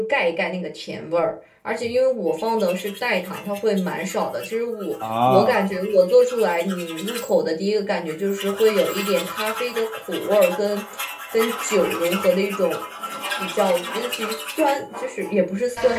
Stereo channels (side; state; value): both; identical; correlation 1.00